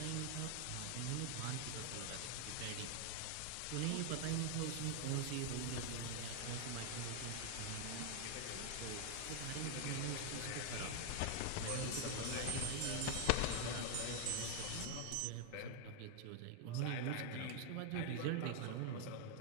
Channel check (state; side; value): different; both; correlation 0.00